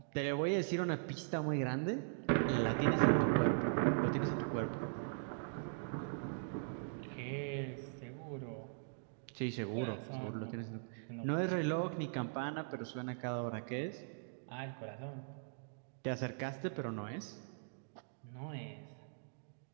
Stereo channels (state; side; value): silent; left; digital silence